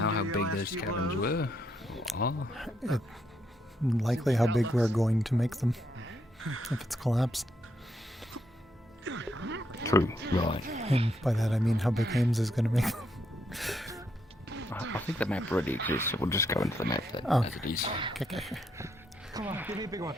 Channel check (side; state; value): both; normal; correlation 0.77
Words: know and how do your big last those few caverns blows. were? Likely how big we're going to make them if it's collapsed. True, right. And by that I mean how big Ames is going to make them. I think the map already exists, so we'll just go into the map then, Oh. as it is. Okay. Come on, give me a big one.